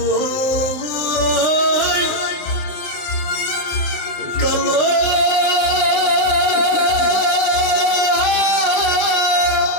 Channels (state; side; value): late; right; 19 ms